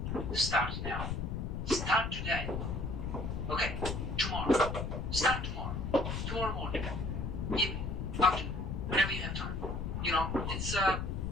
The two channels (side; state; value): left; noise; rumble, 3 dB below the sound